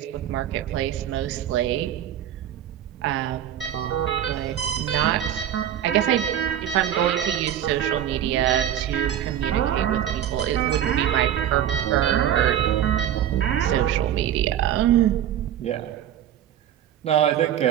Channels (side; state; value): left; quieter; 10.7 dB